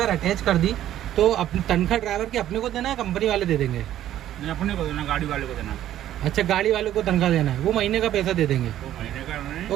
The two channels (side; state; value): left; quieter; 12.2 dB